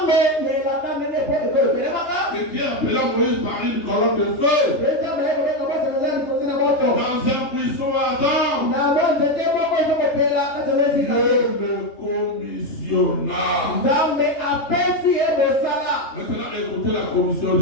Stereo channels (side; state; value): right; late; 3.3 ms